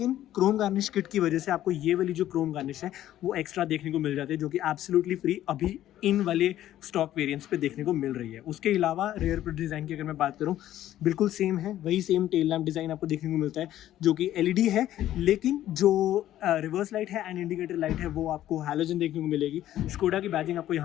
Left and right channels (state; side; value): quieter; right; 12.9 dB